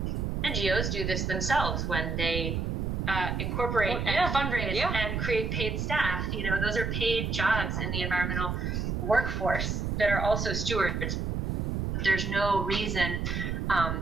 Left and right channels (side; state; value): right; noise; rumble, 1 dB below the sound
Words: NGOs do this themselves when they incorporate and fundraise and create paid staff. Those are paid jobs in the environmental workforce that are also stewards. There's no reason,